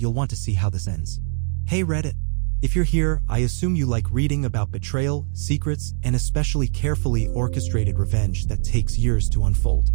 want to see how this ends. Hey Reddit. If you're here, I assume you like reading about betrayal, secrets, and especially carefully orchestrated revenge that takes years to unfold.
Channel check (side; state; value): left; silent; 64 dB below the other